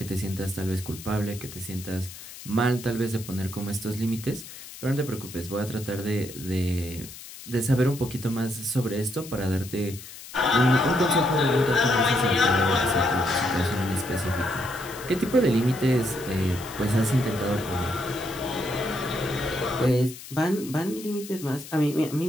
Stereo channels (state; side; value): noise; left; hiss, 14 dB below the sound